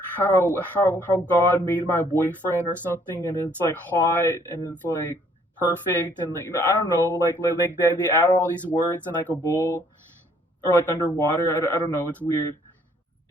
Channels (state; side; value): normal; both; correlation 0.63